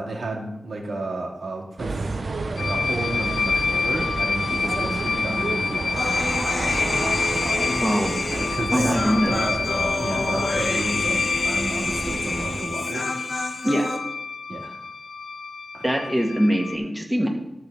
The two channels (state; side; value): normal; both; correlation 0.92